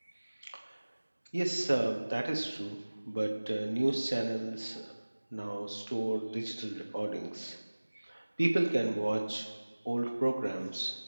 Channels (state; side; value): inverted; both; correlation -1.00